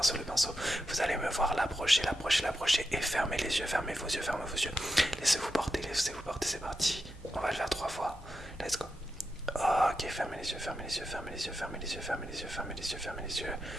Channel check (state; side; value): normal; both; correlation 0.87